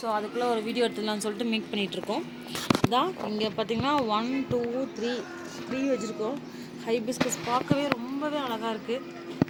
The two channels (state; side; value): identical; both; correlation 1.00